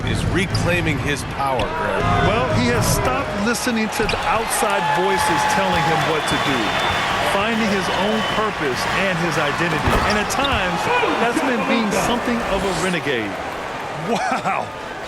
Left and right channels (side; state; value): both; identical; correlation 1.00